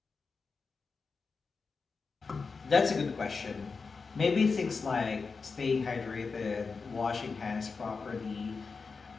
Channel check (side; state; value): right; quieter; 4.7 dB